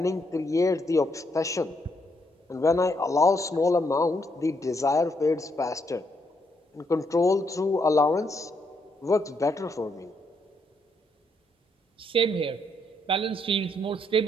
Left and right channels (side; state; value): both; normal; correlation 0.76